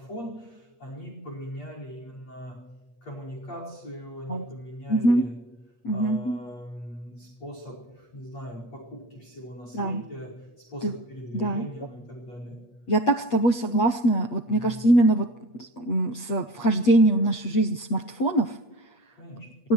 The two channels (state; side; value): late; right; 8.4 ms